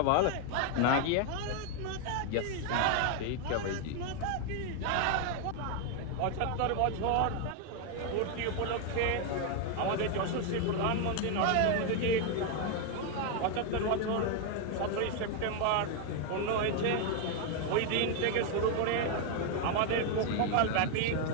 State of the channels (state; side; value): different; both; correlation 0.01